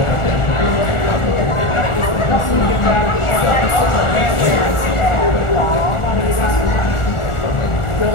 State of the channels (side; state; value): right; late; 1.4 ms